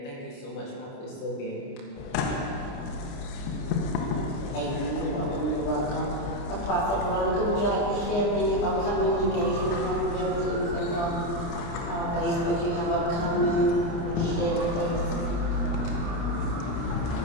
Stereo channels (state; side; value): late; right; 29 ms